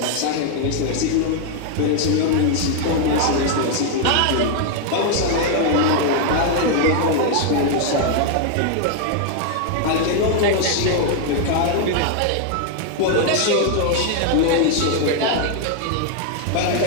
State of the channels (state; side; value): different; both; correlation 0.00